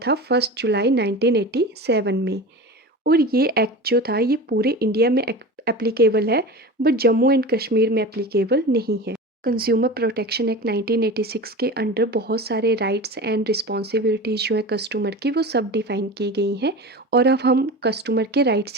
था 1 जुलाई 1987 में. और ये एक्ट जो था ये पूरे इंडिया में एप्लीकेबल है, बट जम्मू एंड कश्मीर में एप्लीकेबल नहीं है. कंज्यूमर प्रोटेक्शन एक्ट 1986 के अंडर बहुत सारे राइट्स एंड रिस्पॉन्सिबिलिटीज़ जो है कस्टमर की वो सब डिफाइन की गई हैं. और अब हम कस्टमर के राइट्स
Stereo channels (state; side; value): normal; both; correlation 0.31